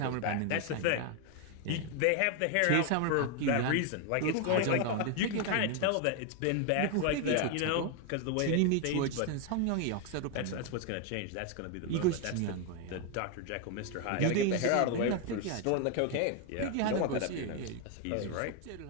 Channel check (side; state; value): both; different; correlation 0.01